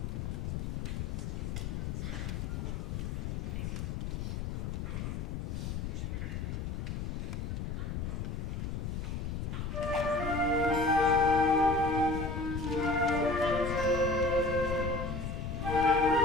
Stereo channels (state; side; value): noise; left; rumble, 3 dB below the sound